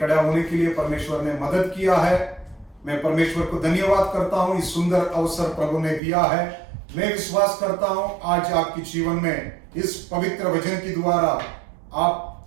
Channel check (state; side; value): drops out; left; at 6.0 s